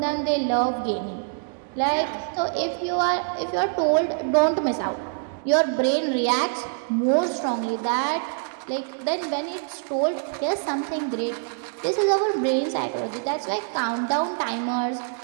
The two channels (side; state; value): left; silent; digital silence